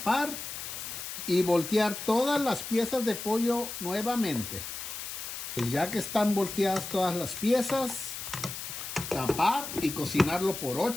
y voltear todas las piezas de pollo nuevamente. Pues ya que están volteadas todas las piezas, tapar y cocinarlo por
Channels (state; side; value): noise; left; hiss, 7 dB below the sound